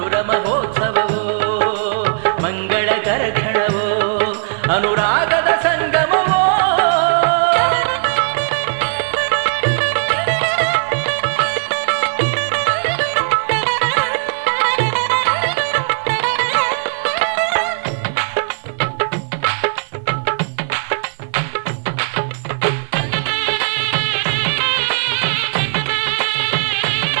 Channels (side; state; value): left; silent; digital silence